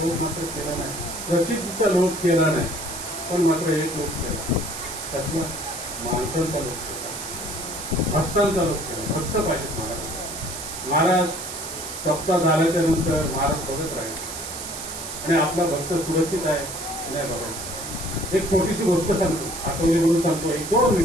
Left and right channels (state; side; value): noise; right; hiss, 8 dB below the sound